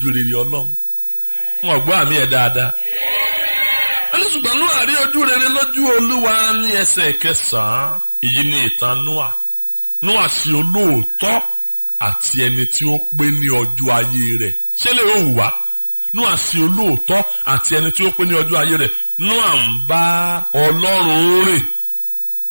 rere Ọlọ́run wọn gbọ́ àmì ẹ̀ dáadáa ẹni ṣùgbọ́n Nóà rí ojú rere lójú Olúwa ní ẹsẹ̀ ìkẹsàn èyí ni ìtàn Nóà ṣe olóòótọ́ àti ẹni tí ó pé ní ọjọ́ ayé rẹ̀. ṣé lè ó wù wá? Nóà ṣe olóòótọ́ àti ẹni tí ó pé ní ọjọ́ ayé rẹ̀. Nóà ń bá Ọlọ́run rìn.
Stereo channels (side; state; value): both; inverted; correlation -1.00